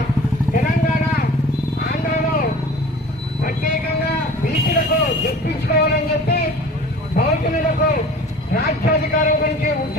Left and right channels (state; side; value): normal; both; correlation 0.42